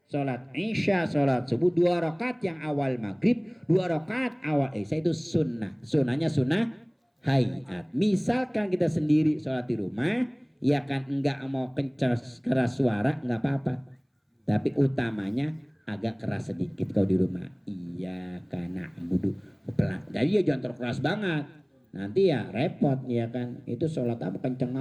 sholat isya, sholat subuh 2 rakaat yang awal maghrib, 2 rakaat awal isya itu sunnah. Sunnahnya sunnah hayat. Misalkan kita sendiri sholat di rumah, ya kan enggak mau keras suara enggak apa-apa. Tapi utamanya agak keras sedikit kalau di rumah. Iya karena budu pelan. Jadi ya jangan terlalu keras banget. Nanti ya repot ya kan. Itu sholat apa kenceng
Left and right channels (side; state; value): both; identical; correlation 1.00